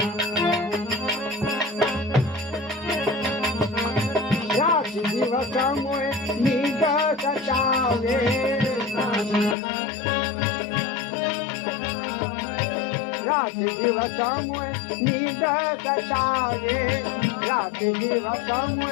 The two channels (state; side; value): drops out; right; at 9.6 s